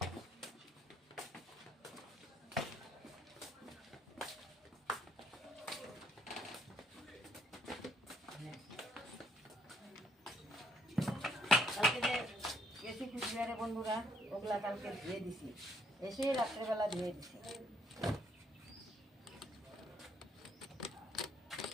কালকে যে গেছি কুচবিহারে বন্ধুরা, ওগুলা কালকে ধুয়ে দিছি, এসে রাত্রেবেলা ধুয়ে দিছি।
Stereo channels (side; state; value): both; normal; correlation 0.68